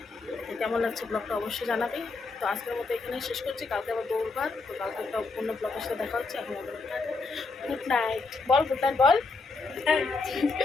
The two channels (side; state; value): right; quieter; 3.9 dB